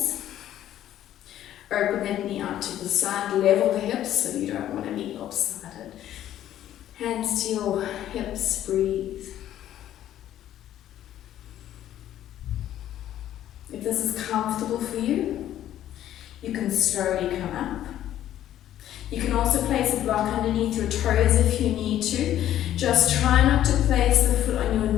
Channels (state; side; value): quieter; right; 12.1 dB